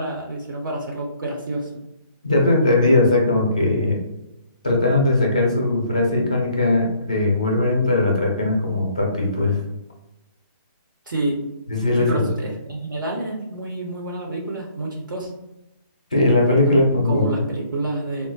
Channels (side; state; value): both; inverted; correlation -0.62